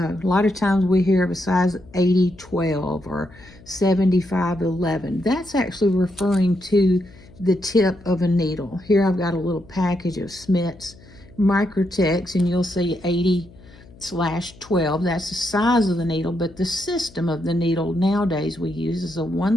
lot of times we hear of a size 80-12 or 75-11. That's actually referring to the tip of a needle. Here I've got a little package of Smith's Microtex, and you'll see 80/12. That's the size of the needle, but the system of the needle nowadays we use is a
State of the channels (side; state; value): left; noise; hum, 23 dB below the sound